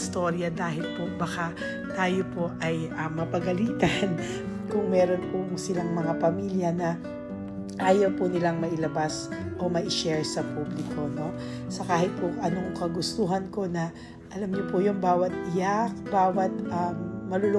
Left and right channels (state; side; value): identical; both; correlation 1.00